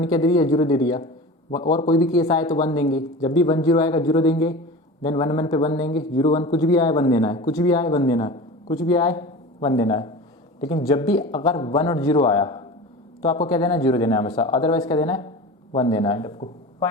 क्या दे दिया? 0 दे दिया। और कोई भी केस आए तो 1 देंगे। जब भी 1 0 आएगा 0 देंगे, देन 1 1 पे 1 देंगे। 0 1 कुछ भी आए 1 देना है, कुछ भी आए 1 देना है, कुछ भी आए 1 देना है। लेकिन जब भी अगर 1 और 0 आया तो आपको क्या देना है? 0 देना है हमेशा, अदरवाइज क्या देना है? 1 देना है आपको।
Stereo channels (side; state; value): both; normal; correlation 0.33